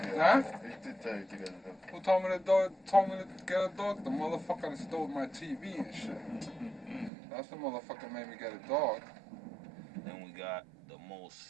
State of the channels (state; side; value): drops out; left; at 7.1 s